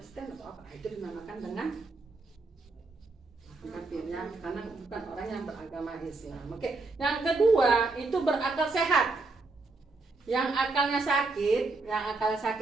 atau apa, itu dinamakan dengan kafirnya karena bukan orang yang beragama Islam. Oke, yang kedua itu berakal sehat. Yang akalnya sakit,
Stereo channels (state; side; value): quieter; left; 3.7 dB